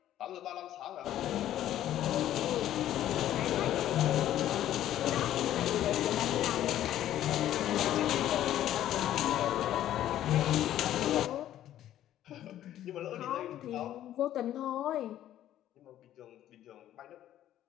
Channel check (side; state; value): right; quieter; 12.3 dB